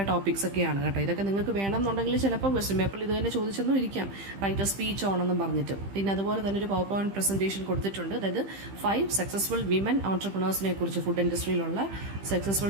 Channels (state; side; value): late; left; 15 ms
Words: ടോപ്പിക്സ് ഒക്കെയാണ് കേട്ടോ. ഇതൊക്കെ നിങ്ങൾക്ക് വേണമെന്നുണ്ടെങ്കിൽ ചിലപ്പോൾ ക്വസ്റ്റ്യൻ പേപ്പറിൽ ഇത് തന്നെ ചോദിച്ചെന്നും ഇരിക്കാം, റൈറ്റ് എ സ്പീച്ച് ഓണെന്നും പറഞ്ഞിട്ട്. പിന്നെ അതുപോലെ തന്നെ ഒരു പവർ പോയിന്റ് പ്രസന്റേഷൻ കൊടുത്തിട്ടുണ്ട്. അതായത് 5 സക്സസ്ഫുൾ വിമൻ ഓൺട്രപ്രണേഴ്സിനെ കുറിച്ച്, ഫുഡ് ഇൻഡസ്ട്രിയിലുള്ള